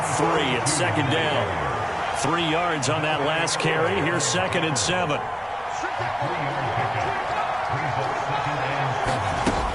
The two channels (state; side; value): identical; both; correlation 1.00